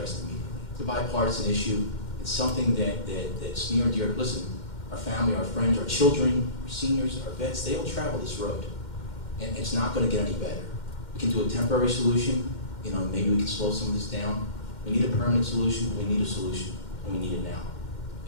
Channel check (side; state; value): right; late; 2.1 ms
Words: immediately. It's a bipartisan issue. It's something that's near and dear. Listen, our family, our friends, our children, our seniors, our vets, they all travel this road. And it's not going to get any better. We can do a temporary solution. Maybe we can slow some of this down. We need a permanent solution. We need a solution, and we need it now.